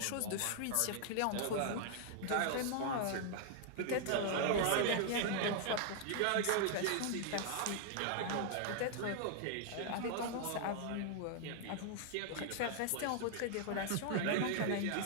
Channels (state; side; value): different; both; correlation -0.01